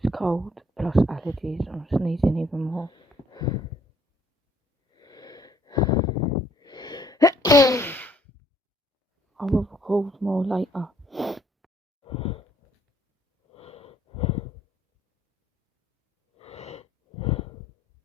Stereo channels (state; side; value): normal; both; correlation 0.65